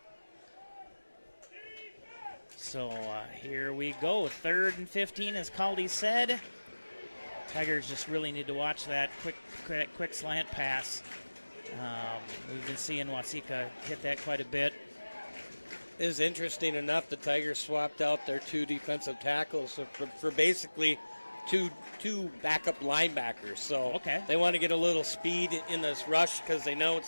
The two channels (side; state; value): both; inverted; correlation -1.00